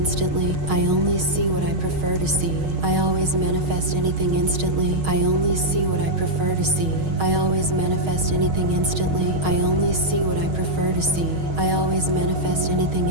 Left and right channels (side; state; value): left; late; 6.4 ms